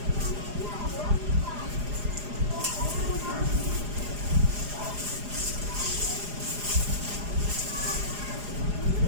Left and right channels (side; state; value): left; late; 4.9 ms